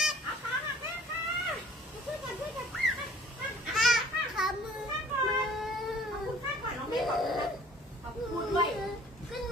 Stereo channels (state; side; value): normal; both; correlation 0.52